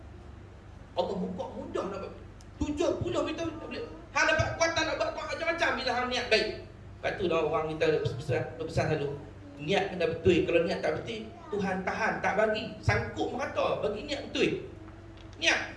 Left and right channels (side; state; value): both; identical; correlation 1.00